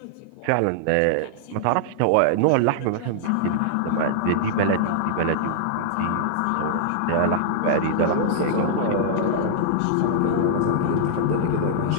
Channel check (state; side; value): different; both; correlation -0.01